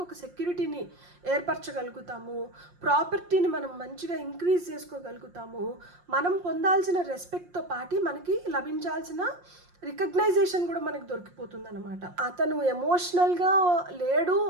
ఒక సెక్యూరిటీని ఏర్పరచగలుగుతాము, ప్రాపర్టీని మనం మంచిగా ఇంక్రీజ్ చేసుకోగలుగుతాము, మనం పొందాల్సిన రెస్పెక్ట్తో పాటు మనకి లభించాల్సిన రికగ్నైజేషన్ కూడా మనకు దొరికిపోతుంది అనమాట. అతను ఎమోషనల్గా లేడు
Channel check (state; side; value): late; left; 5.6 ms